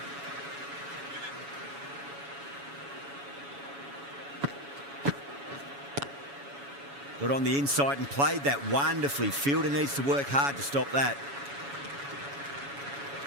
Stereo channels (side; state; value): left; late; 7.1 ms